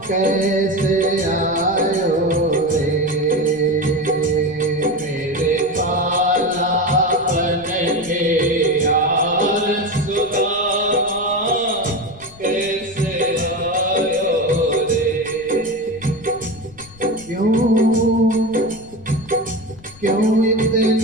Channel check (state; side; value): noise; left; rumble, 23 dB below the sound